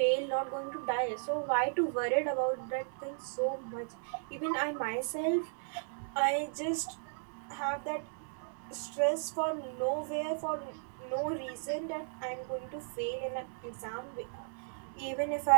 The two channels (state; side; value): silent; left; digital silence